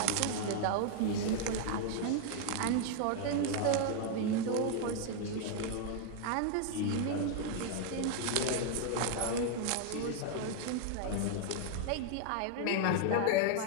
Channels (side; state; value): both; different; correlation 0.00